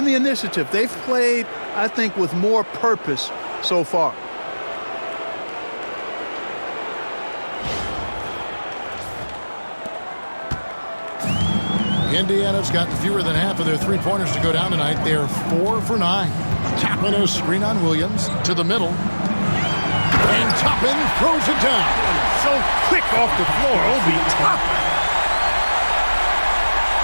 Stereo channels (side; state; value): both; inverted; correlation -1.00